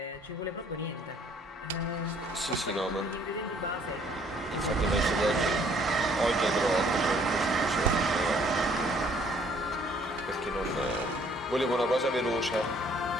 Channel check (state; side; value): normal; both; correlation 0.61